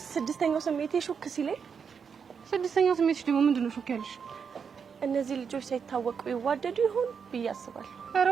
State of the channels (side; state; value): left; quieter; 6.4 dB